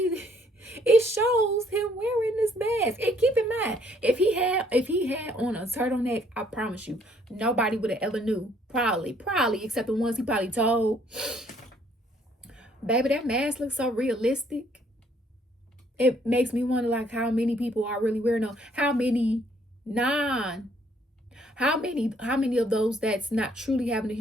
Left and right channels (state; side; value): normal; both; correlation 0.65